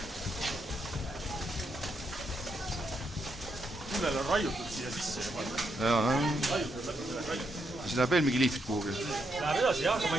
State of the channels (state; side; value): normal; both; correlation 0.79